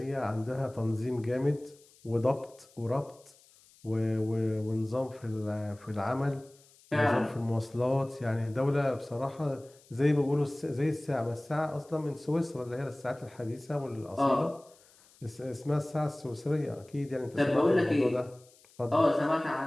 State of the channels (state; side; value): noise; left; hiss, 28 dB below the sound